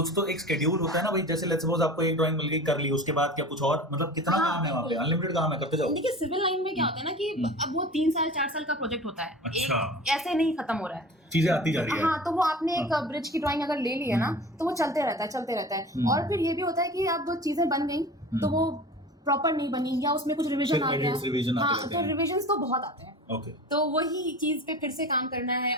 तो एक शेड्यूल होता है ना भाई। जैसे लेट्स सपोज आपको एक ड्राइंग मिल गई, कर ली, उसके बाद क्या कुछ और, मतलब कितना काम है वहाँ पे? अनलिमिटेड काम है, करते जाओ। देखिए, सिविल लाइन में क्या होता है ना कि अब वो 3 साल 4 साल का प्रोजेक्ट होता है। अच्छा। ऐसे नहीं खत्म हो रहा है, चीजें आती जा रही है। हाँ, तो वो आपने एक ब्रिज की ड्राइंग अगर ले ली है ना, तो वो चलते रहता है। और फिर ये भी होता है कि अब वो चीजें बन गई, तो वो प्रॉपर नहीं बनी, या उसमें कुछ रिवीजन आ गया, हाँ, तो रिवीजन तो बहुत आते हैं। ओके। तो वही चीज पे फिर से काम करना है।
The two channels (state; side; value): normal; both; correlation 0.37